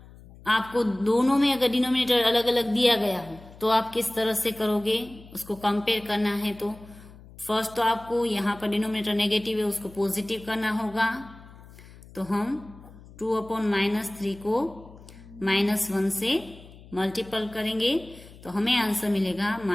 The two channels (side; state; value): left; noise; hum, 20 dB below the sound